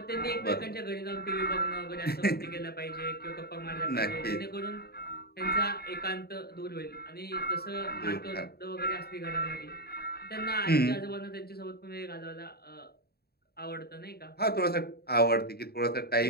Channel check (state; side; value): late; right; 0.46 ms